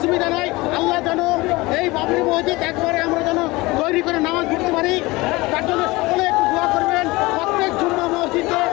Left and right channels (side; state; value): right; quieter; 22.0 dB